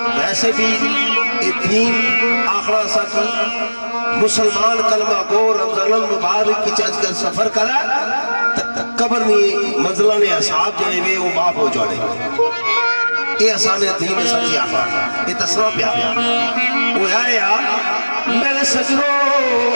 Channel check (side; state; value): both; inverted; correlation -1.00